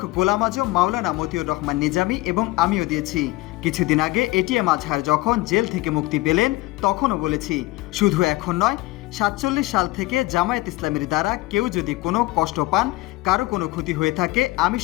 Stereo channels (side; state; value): right; quieter; 19.8 dB